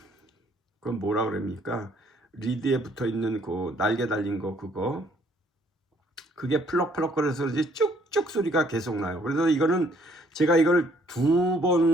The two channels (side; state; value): both; normal; correlation 0.64